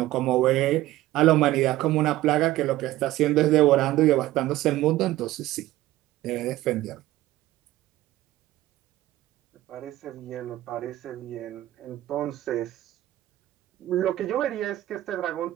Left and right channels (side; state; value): left; quieter; 15.8 dB